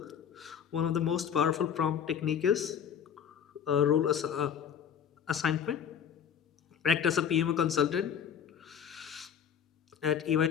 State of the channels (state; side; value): quieter; right; 8.1 dB